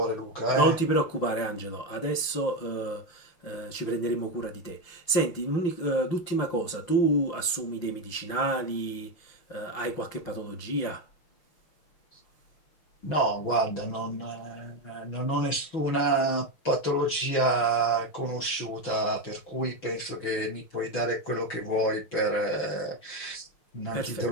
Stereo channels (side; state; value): right; late; 6.1 ms